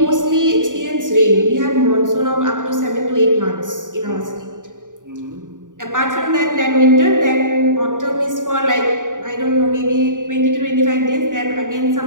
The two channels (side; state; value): left; late; 0.88 ms